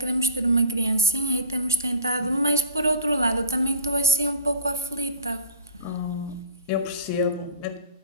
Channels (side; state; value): both; inverted; correlation -0.39